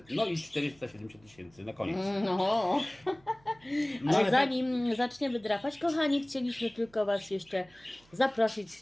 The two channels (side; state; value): right; noise; hum, 29 dB below the sound